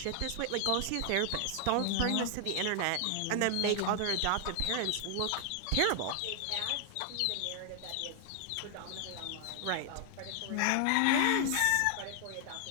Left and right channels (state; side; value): different; both; correlation 0.00